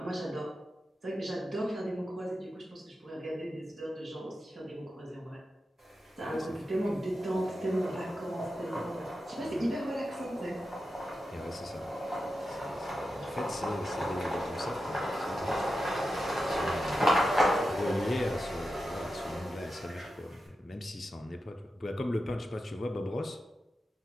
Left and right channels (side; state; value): both; normal; correlation 0.90